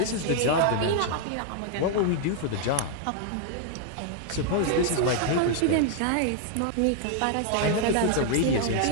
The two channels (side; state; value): both; different; correlation 0.00